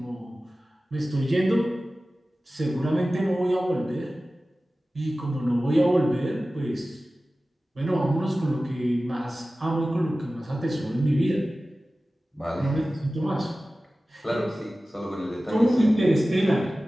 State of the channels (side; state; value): both; normal; correlation 0.96